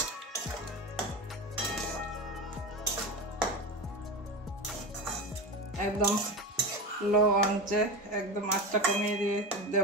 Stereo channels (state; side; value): normal; both; correlation 0.22